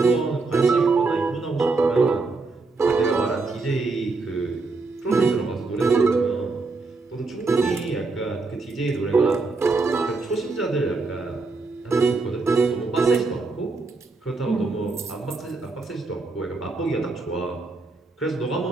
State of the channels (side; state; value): left; quieter; 3.8 dB